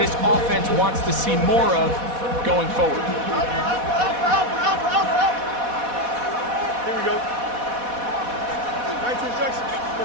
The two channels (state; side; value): late; left; 4.1 ms